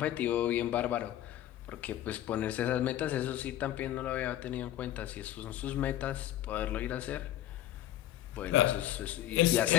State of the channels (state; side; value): quieter; right; 13.0 dB